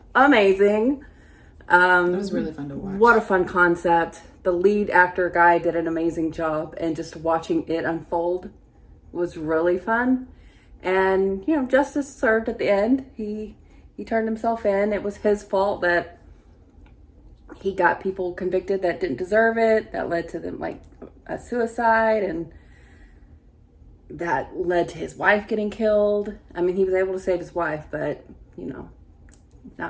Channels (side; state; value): both; identical; correlation 1.00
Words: amazing. It was really fun to watch. What a fun concept. The lead actor guy did an amazing job, and just watching it unfold was really fun. And, justice served at the end. He turned himself in. It was his fault that he got people convicted that didn't deserve it. That led to them, like, a suicide. And that led to his wife getting killed. I mean, he was able to save his wife, but,